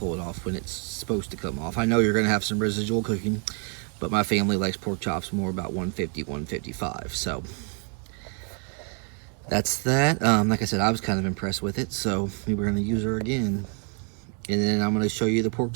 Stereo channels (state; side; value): quieter; left; 38.0 dB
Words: it off when it's supposed to come off. I know you're gonna have some residual cooking, but my family likes pork chops more about 150, 155. So that's that. Like I said, I was kind of impressed with it, so we were gonna use her again. And then I'm gonna show you the pork